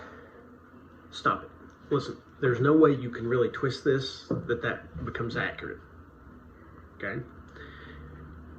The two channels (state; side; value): identical; both; correlation 1.00